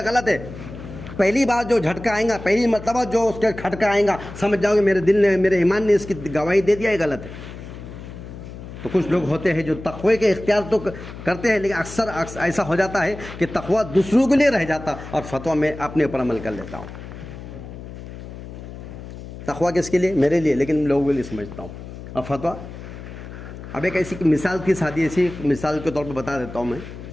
غلط ہے، پہلی بار جو جھٹکا آئے گا، پہلی مرتبہ جو اس کے کھٹکا آئے گا، سمجھ جاؤ گے میرے دل نے، میرے ایمان نے اس کی گواہی دے دیا ہے غلط ہے۔ تو کچھ لوگ ہوتے ہیں جو تقوی کے اختیار تو کرتے ہیں، لیکن اکثر ایسا ہو جاتا ہے کہ تقوی دوسروں کے لیے رہ جاتا اور فتویٰ میں اپنے اوپر عمل کر لیتا ہوں۔ تقوی کس کے لیے؟ میرے لیے، لیکن لوگوں کے لیے سمجھتا ہوں۔ اور فتویٰ، اب ایک ایسی مثال کی سادی ایسی مثال کے طور پہ بتا دیتا ہوں میں،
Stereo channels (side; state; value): left; noise; hum, 12 dB below the sound